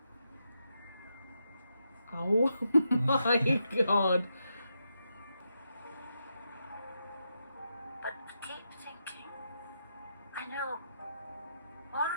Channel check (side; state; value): both; inverted; correlation -0.84